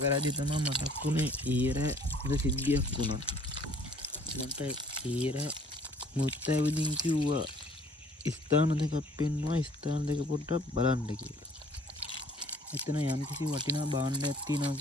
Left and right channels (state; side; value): normal; both; correlation 0.56